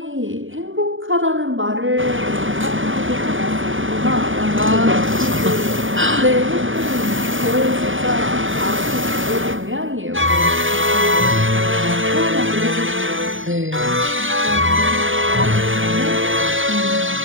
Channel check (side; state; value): left; late; 0.57 ms